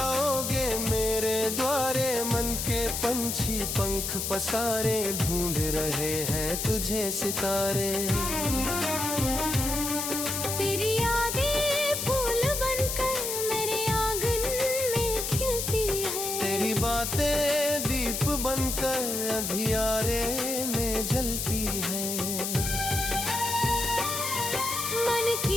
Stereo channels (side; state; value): left; noise; hiss, 2 dB below the sound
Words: मेरे द्वारे। मन के पंछी पंख पसारे, ढूंढ रहे हैं तुझे सितारे। तेरी यादें फूल बनकर मेरे आंगन में खिलती है। तेरी बातें दीप बनकर अंधियारे में जलती है। मन